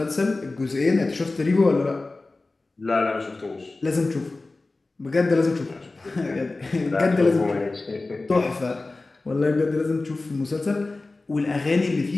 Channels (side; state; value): right; quieter; 3.3 dB